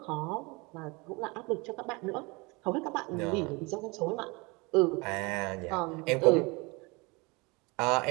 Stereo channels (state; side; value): quieter; left; 26.9 dB